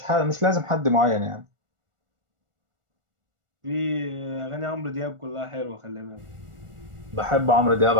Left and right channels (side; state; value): left; late; 1.4 ms